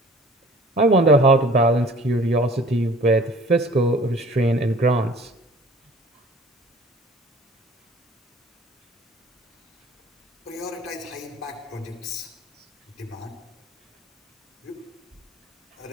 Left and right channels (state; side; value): normal; both; correlation 0.49